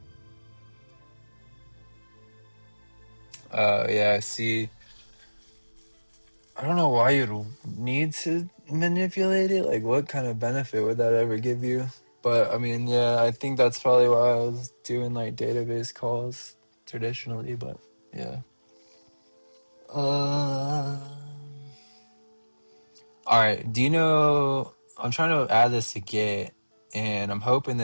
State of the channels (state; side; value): inverted; both; correlation -1.00